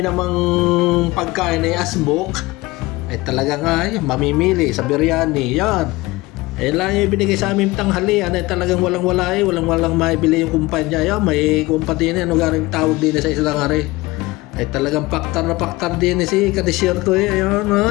namang pagkain ay asbok ay talaga nga mamimili sa biryani yan. Eh lang yung binigay sa aming tanghalian ay talagang walang-wala walang-walang maibili yung kumpanya. Yan, may kumpanya ano garing tawag din sa isang hari. Ay talagang paktar na paktar din si kadesierto ayun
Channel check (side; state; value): right; quieter; 20.9 dB